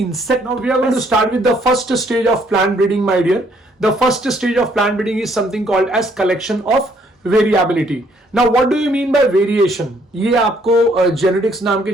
insect? Now we are going to start with the first stage of plant breeding, my dear. The first stage of plant breeding is something called as collection of variability. Now what do you mean by variation? ये आपको genetics नाम के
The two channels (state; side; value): normal; both; correlation 0.66